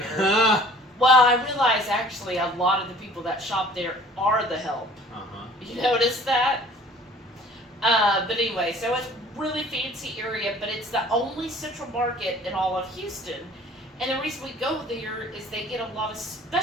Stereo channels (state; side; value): normal; both; correlation 0.51